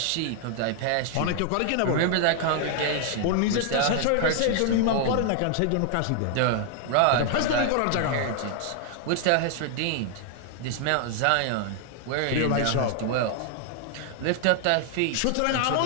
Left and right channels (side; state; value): both; different; correlation 0.00